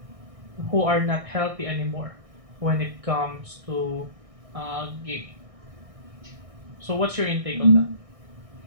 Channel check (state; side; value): late; left; 1.6 ms